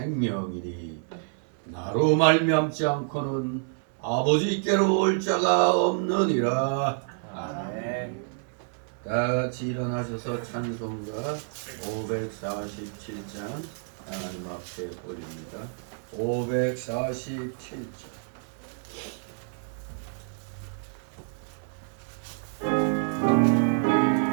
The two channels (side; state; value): left; silent; 59 dB below the other